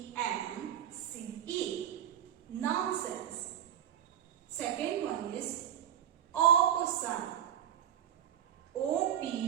Nonsense. Second one is opossum. Opossum.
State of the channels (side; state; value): left; quieter; 10.3 dB